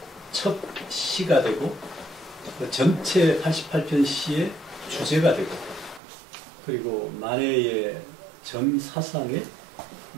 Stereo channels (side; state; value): left; drops out; at 6.0 s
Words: 첫 시가 되고 전체 88편 시의 주제가 되고, 그리고 만해의 전 사상의